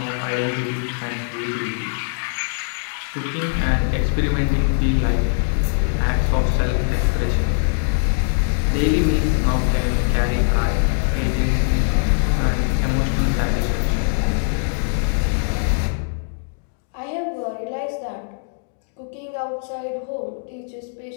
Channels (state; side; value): silent; right; digital silence